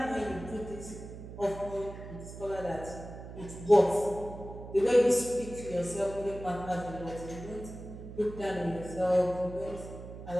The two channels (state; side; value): noise; right; hum, 12 dB below the sound